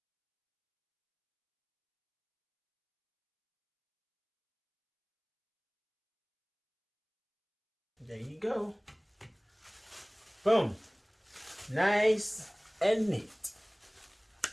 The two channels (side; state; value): both; identical; correlation 1.00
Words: there you go. Boom. Nice and neat.